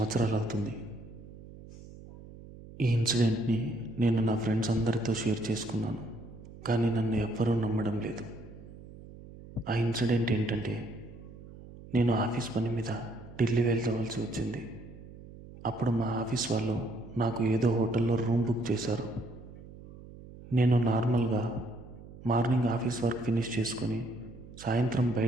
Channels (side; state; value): right; noise; hum, 17 dB below the sound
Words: అవుతుంది. ఈ ఇన్సిడెంట్ని నేను నా ఫ్రెండ్స్ అందరితో షేర్ చేసుకున్నాను, కానీ నన్ను ఎవ్వరూ నమ్మడం లేదు. ఆ ఇన్సిడెంట్ ఏంటంటే, నేను ఆఫీస్ పని మీద ఢిల్లీ వెళ్ళవలసి వచ్చింది. అప్పుడు మా ఆఫీస్ వాళ్ళు నాకు ఏదో హోటల్లో రూమ్ బుక్ చేశారు. నేను నార్మల్గా మార్నింగ్ ఆఫీస్ వర్క్ ఫినిష్ చేసుకొని సాయంత్రం